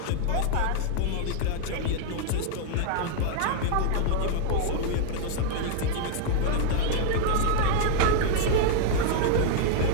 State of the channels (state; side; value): different; both; correlation 0.00